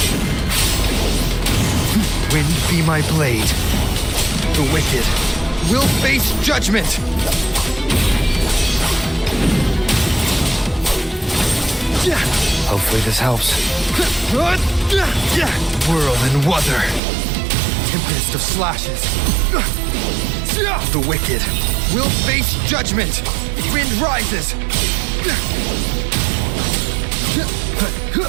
Wind be my blade. The wicked will face judgment! Hopefully this helps. Whirl and Wuther. Tempest of slashes. The wicked will face judgment. Wind rises.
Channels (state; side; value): drops out; left; at 17.0 s